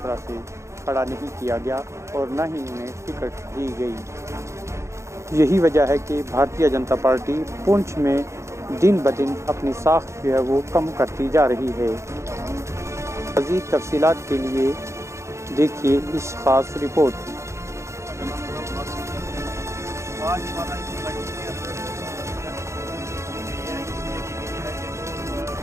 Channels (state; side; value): late; left; 0.14 ms